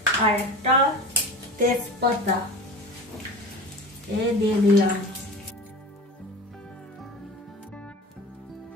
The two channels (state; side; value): normal; both; correlation 0.34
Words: আর একটা তেজপাতা দিয়ে দিলাম।